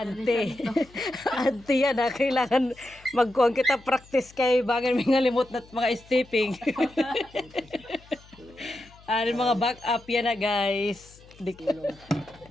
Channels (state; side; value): noise; left; hum, 25 dB below the sound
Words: ante yan na kailangan magkuan kita practice kay bagan may ngalimot na mga stepping. Ano mga back up yan na guys.